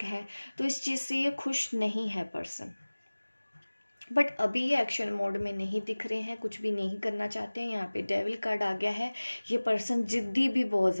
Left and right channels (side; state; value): both; inverted; correlation -1.00